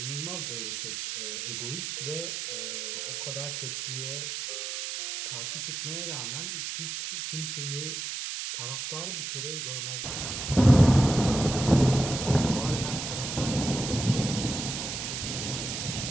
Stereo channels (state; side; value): noise; right; hiss, 4 dB below the sound